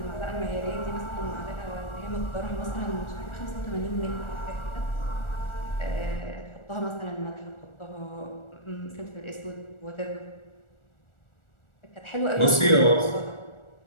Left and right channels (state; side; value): late; right; 1.4 ms